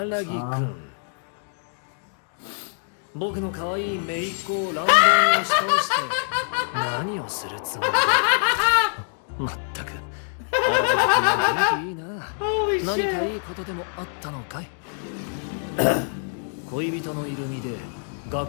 木 Tom. 君、僕の可愛い姪っ子を乱暴に押し倒して何をするつもりだ。まったく荒木君は元気いいな。 Holy 何か shit. いいことでもあったのかい。恋人のいる身で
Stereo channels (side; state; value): right; silent; digital silence